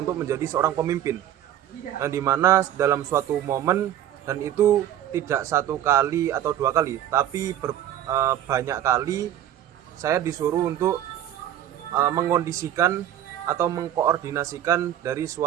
menjadi seorang pemimpin, yang dimana dalam suatu momen, dan itu tidak satu kali atau dua kali, tapi banyak kali saya disuruh untuk mengkondisikan atau mengkoordinasikan dari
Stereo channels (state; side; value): quieter; left; 11.4 dB